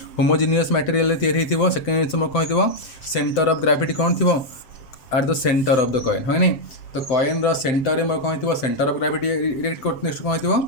होमोजिनियस मटेरियल तैयारी हो सेकेंड जिन कही सेंटर ऑफ ग्रेविटी कौन थी are the center of the coin है नहीं तो कॉइन रो सेंटर में कौन थी center of gravity erect next कौन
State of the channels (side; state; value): right; late; 7.7 ms